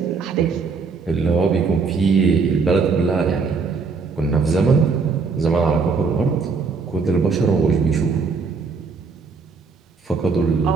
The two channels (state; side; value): quieter; left; 4.8 dB